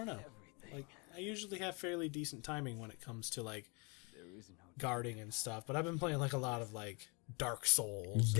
know. Like I usually have fairly decent timing when it comes to like guarding and stuff. But I've been playing like a lot of like Dark Souls,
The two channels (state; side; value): quieter; right; 31.3 dB